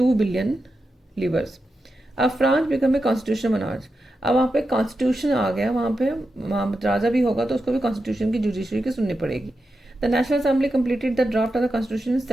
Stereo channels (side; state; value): both; normal; correlation 0.89